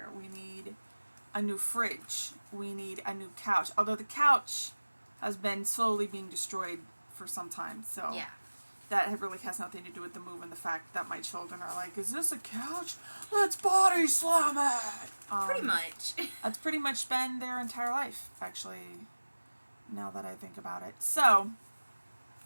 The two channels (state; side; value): inverted; both; correlation -1.00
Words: We need a new fridge. We need a new couch. Although the couch has been slowly being destroyed for some time. So yeah. That really has nothing to do with the move and the fact that my children are like, is this a couch? Let's body slam it. Pretty much. That's pretty much been their entire life, actually, now that I think about it. So